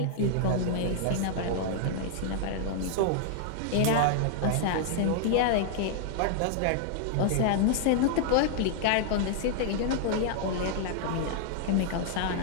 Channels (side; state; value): both; different; correlation -0.01